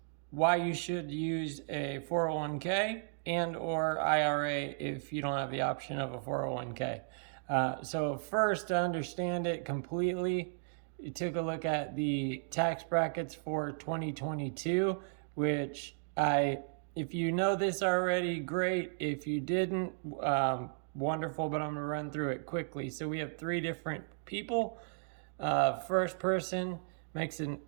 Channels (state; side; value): silent; left; digital silence